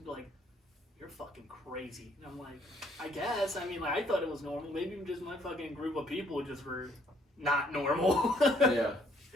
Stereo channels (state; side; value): normal; both; correlation 0.65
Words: be like, "You're fucking crazy." And I'm like, "I guess. I mean, like I thought it was normal. Maybe just my fucking group of people just were not normal." Yeah.